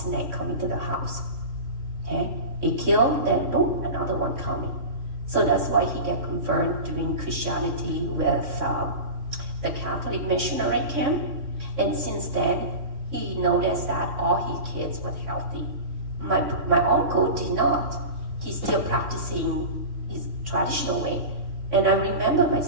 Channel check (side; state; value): left; late; 3.6 ms